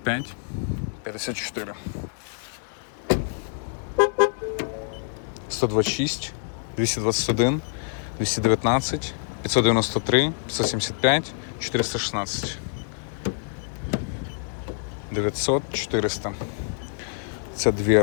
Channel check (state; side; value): silent; right; digital silence